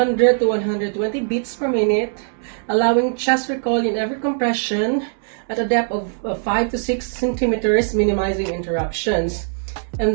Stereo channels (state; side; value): silent; left; 65 dB below the other